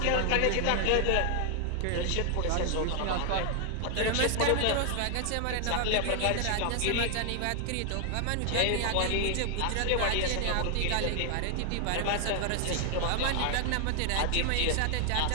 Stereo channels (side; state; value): both; different; correlation 0.00